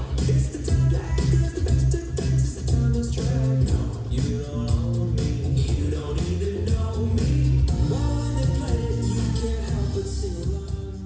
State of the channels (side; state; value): both; identical; correlation 1.00